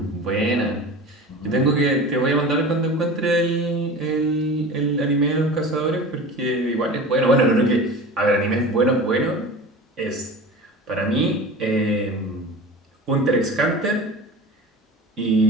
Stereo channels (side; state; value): both; normal; correlation 0.34